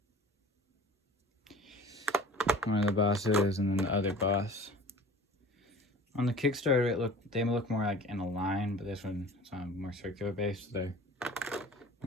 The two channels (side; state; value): both; normal; correlation 0.43